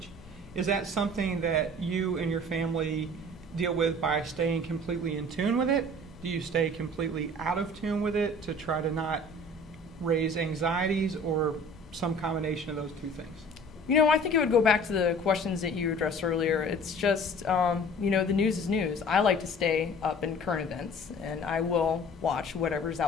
is that something that you and your family deal with by staying completely in tune with it? Do you stay completely out of tune with it to try to not raise anxieties, or some combination of those two things? I think it would go back to the questions that you addressed earlier. It's just, the news is news. I like to stay up in current events, and I will watch whatever's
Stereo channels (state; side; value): normal; both; correlation 0.47